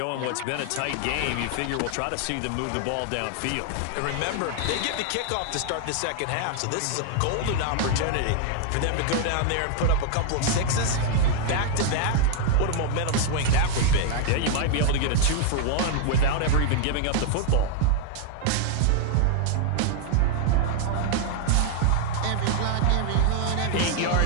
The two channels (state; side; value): different; both; correlation 0.00